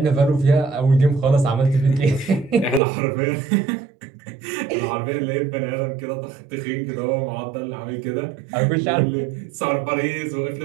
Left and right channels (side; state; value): left; drops out; at 2.8 s